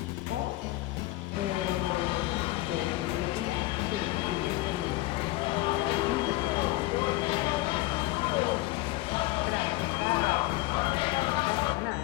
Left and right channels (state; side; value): quieter; right; 18.6 dB